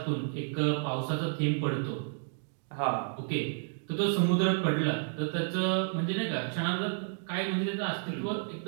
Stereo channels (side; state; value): left; silent; 57 dB below the other